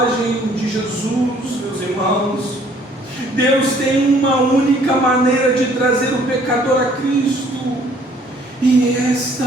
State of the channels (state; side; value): normal; both; correlation 0.59